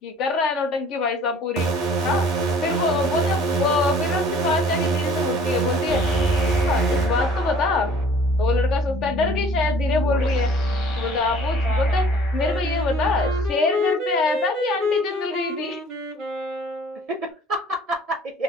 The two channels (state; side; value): normal; both; correlation 0.52